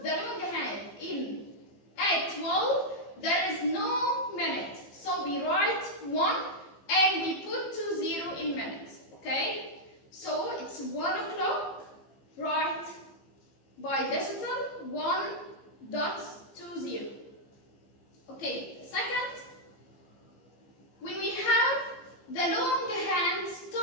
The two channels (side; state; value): right; late; 15 ms